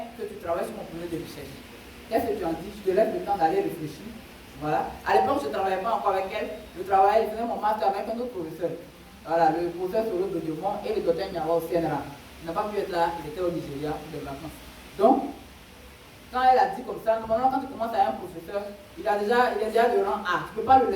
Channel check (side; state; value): both; identical; correlation 1.00